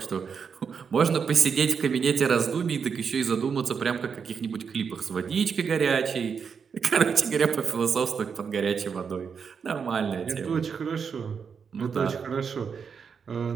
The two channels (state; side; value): quieter; left; 6.3 dB